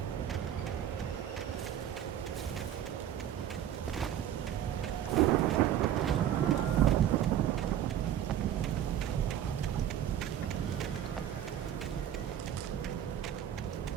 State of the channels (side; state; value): left; quieter; 10.5 dB